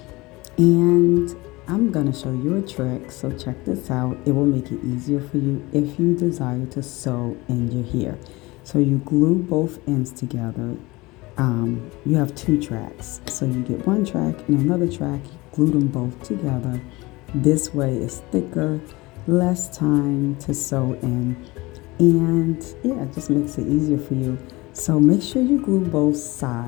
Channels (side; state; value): right; quieter; 22.1 dB